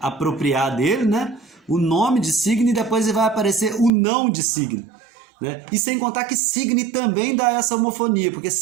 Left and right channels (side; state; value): left; drops out; at 3.9 s